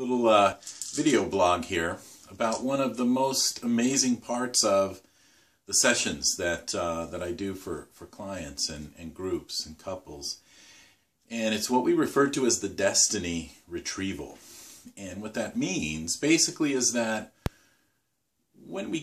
video blog here about one of the most amazing parts of the sessions that I do for clients and groups and couples. And it's what we refer to as the Destiny Retrieval. And what that means basically is that when we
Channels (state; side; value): identical; both; correlation 1.00